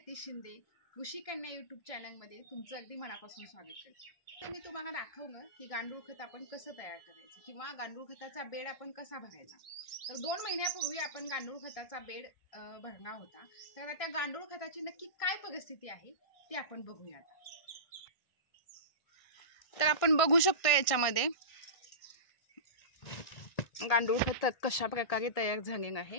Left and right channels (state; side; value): late; right; 1.6 ms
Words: शिंदे कृषी कन्या यूट्यूब चॅनलमध्ये तुमचं अगदी मनापासून स्वागत करते. तर मी तुम्हाला दाखवलं की गांडूळ खत आपण कसं तयार करायचं किंवा गांडूळ खताचा बेड आपण कसा भरायचा. तर 2 महिन्यापूर्वी आपण गांडूळ खताचा बेड भरला होता. तर त्या गांडूळ खताची नक्की काय परिस्थिती आहे ती आपण बघूया. तर आपण बघू शकतो याच्यामध्ये गांडूळ खत कशा प्रकारे तयार झालेलं